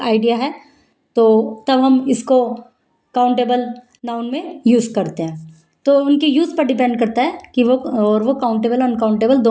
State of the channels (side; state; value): both; identical; correlation 1.00